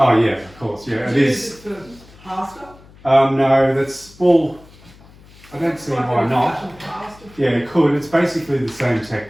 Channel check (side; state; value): left; noise; hum, 24 dB below the sound